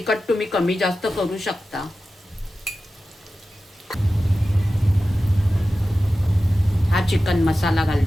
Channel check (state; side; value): normal; both; correlation 0.94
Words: तुम्ही कमी जास्त करू शकता. हा चिकन मसाला